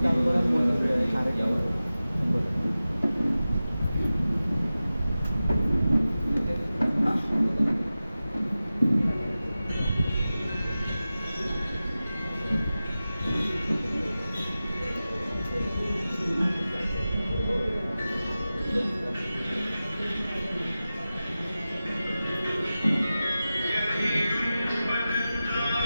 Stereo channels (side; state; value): both; inverted; correlation -0.95